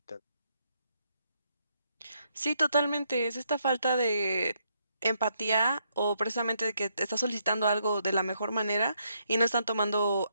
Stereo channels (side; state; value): both; inverted; correlation -0.76